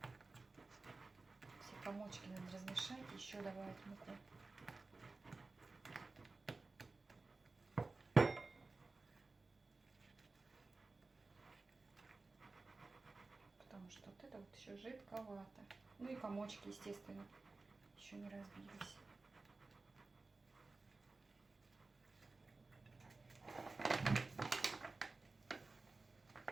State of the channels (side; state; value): left; quieter; 3.6 dB